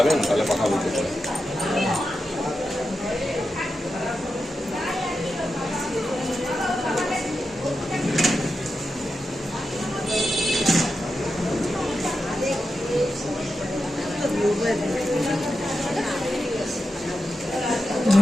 তাহলে কথা বলতে পারেন।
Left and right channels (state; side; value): normal; both; correlation 0.89